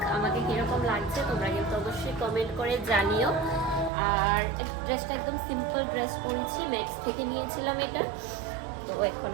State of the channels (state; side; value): drops out; left; at 3.9 s